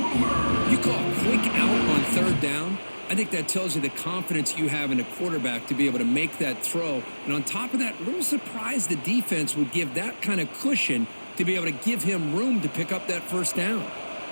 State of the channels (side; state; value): both; inverted; correlation -1.00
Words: You call a quick out on 3rd down. I think that tells you the confidence you have in a quarterback to be able to make that throw. And on top of that, a little surprised the defense would give that kind of cushion to be able to give him room to pick up that first down.